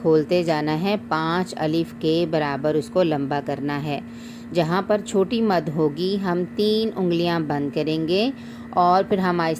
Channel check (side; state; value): both; identical; correlation 1.00